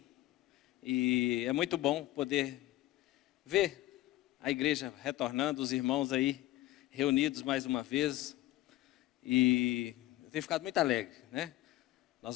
E é muito bom poder ver a igreja retornando, os irmãos aí reunidos mais uma vez. E eu tenho ficado muito alegre, né? Nós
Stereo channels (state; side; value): quieter; right; 16.1 dB